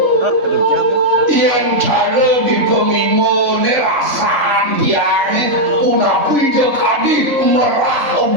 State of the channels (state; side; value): late; left; 3.5 ms